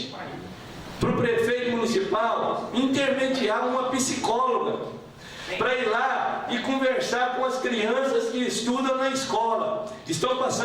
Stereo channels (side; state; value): both; identical; correlation 1.00